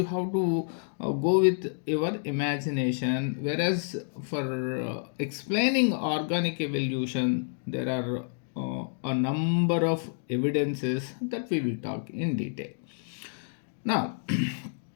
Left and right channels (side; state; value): right; silent; digital silence